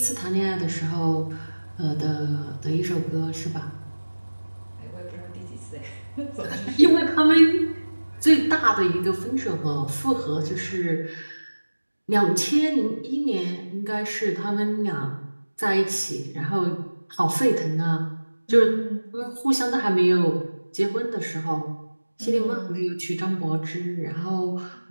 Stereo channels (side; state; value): both; inverted; correlation -1.00